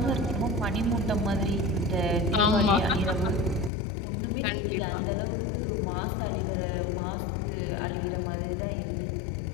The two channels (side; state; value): right; drops out; at 3.7 s